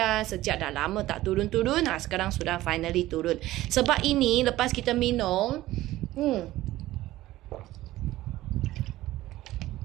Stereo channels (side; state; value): left; quieter; 16.1 dB